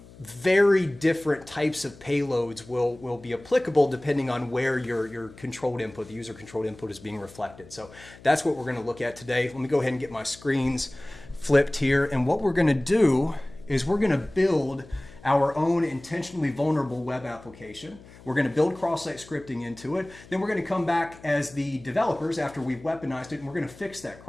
Very different types of payloads will be applicable depending on where your controlled input, the user controlled input, is being reflected. So that's what we're going to look at today. Let me go ahead and get my screens flipped here. And what we're going to do is we're going to build our own intentionally vulnerable web application. We're going to build cross-site scripting into it. Then we're going to come back as the developers after we've weaponized it, and we're going to fix that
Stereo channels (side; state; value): left; noise; hum, 21 dB below the sound